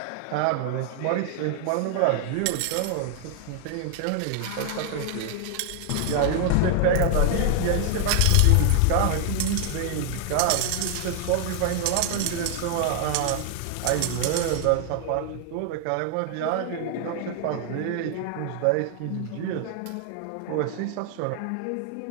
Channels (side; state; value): both; different; correlation 0.00